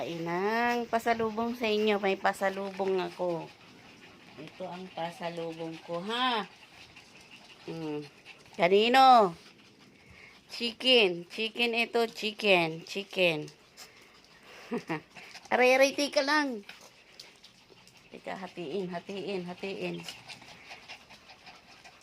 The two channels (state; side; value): identical; both; correlation 1.00